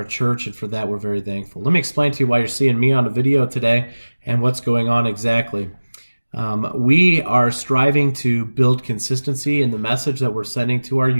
church. And for that, we're very thankful. Let me explain to you why you're seeing me on a video today and what's going on exactly. We are striving to build consistency in the message that we're sending to our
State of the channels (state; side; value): inverted; both; correlation -1.00